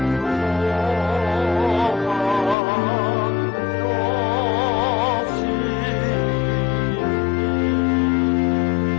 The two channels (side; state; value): right; drops out; at 2.6 s